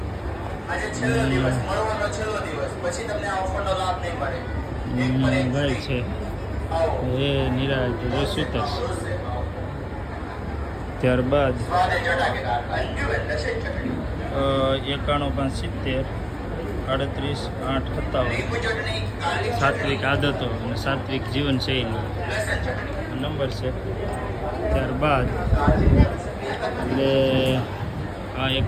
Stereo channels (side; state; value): both; identical; correlation 1.00